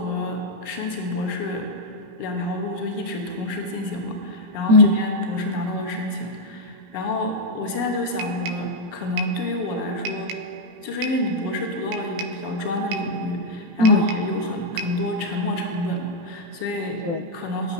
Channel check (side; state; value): left; late; 18 ms